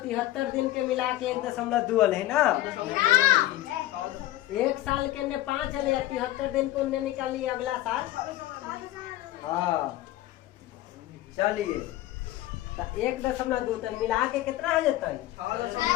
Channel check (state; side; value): quieter; right; 15.4 dB